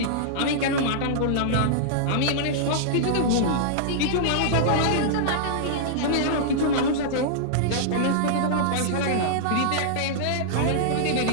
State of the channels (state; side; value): different; both; correlation -0.02